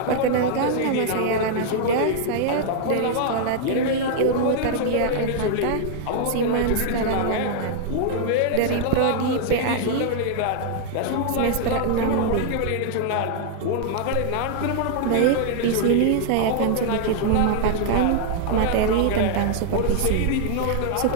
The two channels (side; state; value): both; different; correlation -0.01